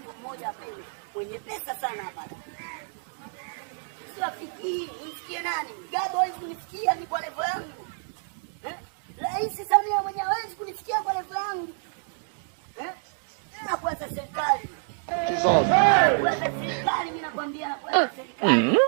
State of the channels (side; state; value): left; silent; 60 dB below the other